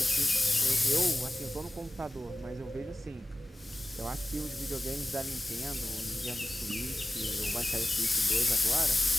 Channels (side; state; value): both; normal; correlation 0.97